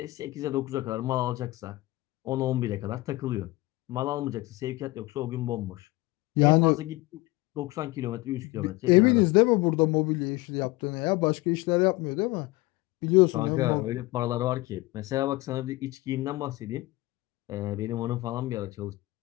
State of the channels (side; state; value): right; quieter; 20.3 dB